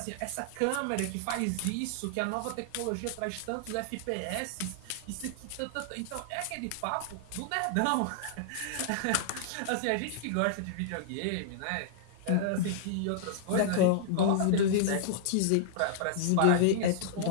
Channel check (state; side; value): different; both; correlation -0.01